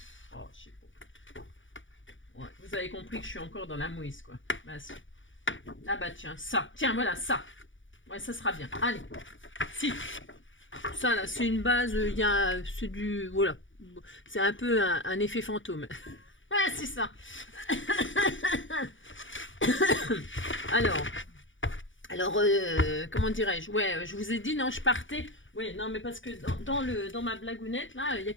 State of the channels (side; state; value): right; late; 0.56 ms